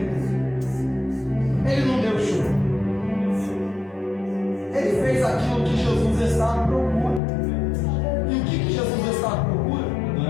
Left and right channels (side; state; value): right; drops out; at 7.2 s